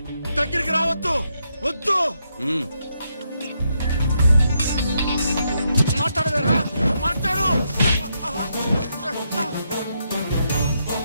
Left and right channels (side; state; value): both; inverted; correlation -0.79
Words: దగ్గరికి రావద్దు, వద్దు. మాట్లాడవేరా? మాట్లాడు.